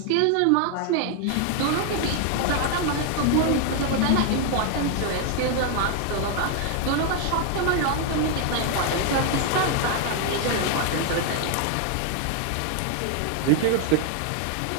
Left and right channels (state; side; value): different; both; correlation 0.00